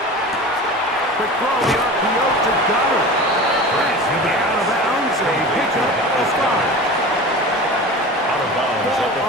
Quick throw, the RPO to Goddard. And he'll be out of bounds. A pickup of 5. Out of bounds Ball at the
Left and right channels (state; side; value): normal; both; correlation 0.34